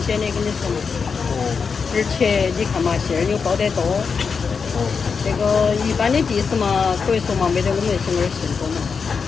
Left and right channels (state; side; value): quieter; right; 5.6 dB